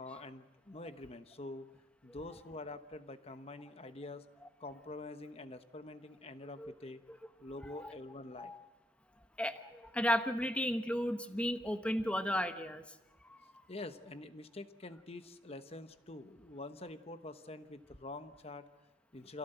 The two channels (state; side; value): normal; both; correlation 0.76